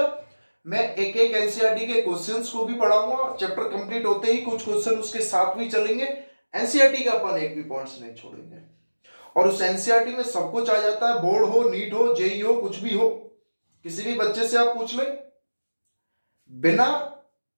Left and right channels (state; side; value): inverted; both; correlation -1.00